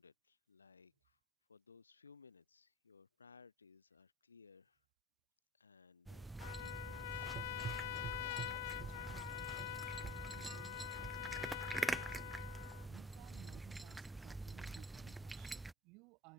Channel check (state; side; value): normal; both; correlation 0.48